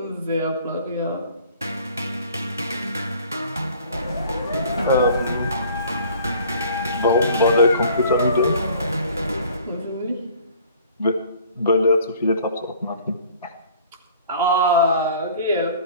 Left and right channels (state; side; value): inverted; both; correlation -0.50